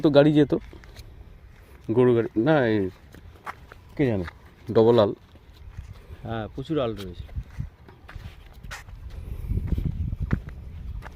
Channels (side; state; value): both; identical; correlation 1.00